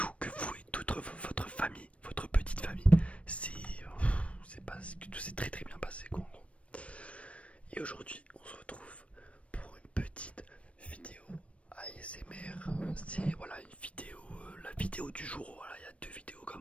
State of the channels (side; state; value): right; late; 0.063 ms